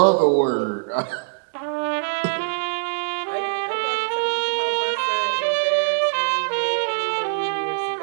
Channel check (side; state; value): left; silent; 64 dB below the other